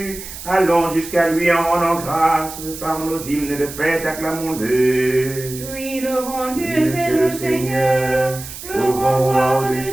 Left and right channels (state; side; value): noise; right; hiss, 12 dB below the sound